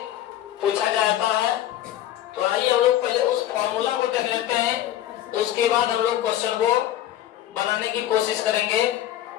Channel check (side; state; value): right; quieter; 12.6 dB